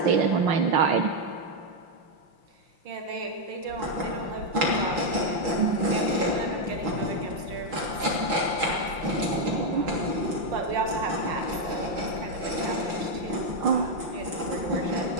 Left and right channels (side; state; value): left; late; 5.7 ms